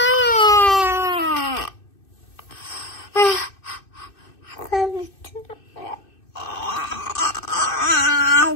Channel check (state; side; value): late; right; 2.6 ms